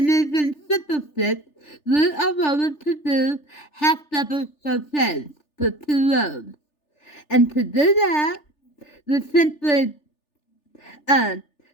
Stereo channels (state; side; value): late; right; 3.4 ms